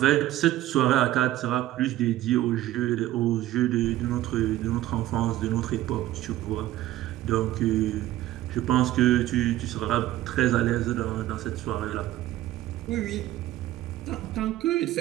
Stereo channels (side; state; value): left; quieter; 14.6 dB